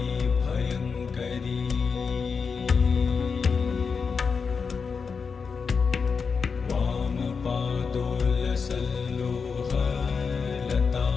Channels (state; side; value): quieter; right; 5.5 dB